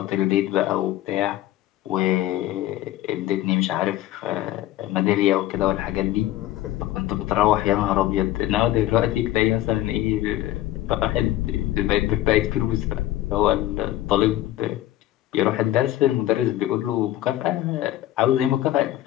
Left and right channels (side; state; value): right; quieter; 14.4 dB